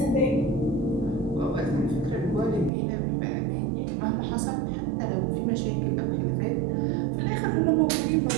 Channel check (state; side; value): drops out; left; at 2.7 s